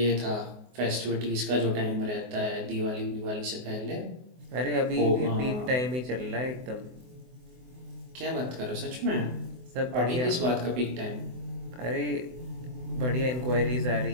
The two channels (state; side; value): late; left; 24 ms